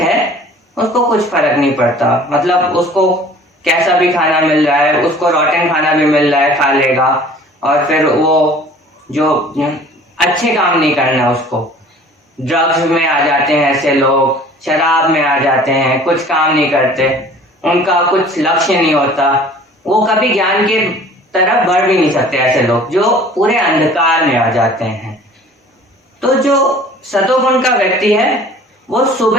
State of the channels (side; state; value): both; normal; correlation 0.48